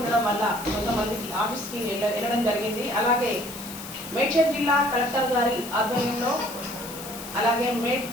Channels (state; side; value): noise; left; hiss, 12 dB below the sound